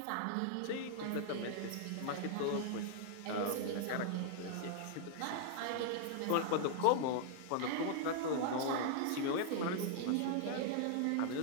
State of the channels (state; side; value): different; both; correlation -0.01